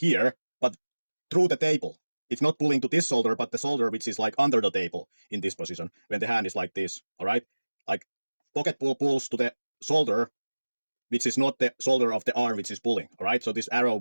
but through the table. It's not pulling to this shoulder, but the shoulder which is like under the table in this position when the hand is like this, all right? Like pocket pull pulls to the shoulder, which is not the shoulder of the arm which is pulling, all right? So this arrow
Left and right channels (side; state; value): both; inverted; correlation -1.00